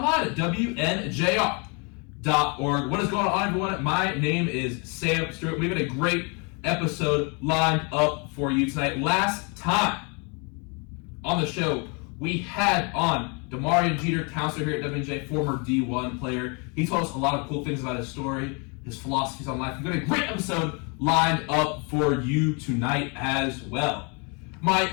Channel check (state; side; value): quieter; right; 33.3 dB